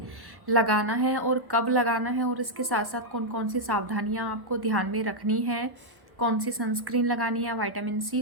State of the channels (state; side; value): late; left; 1.1 ms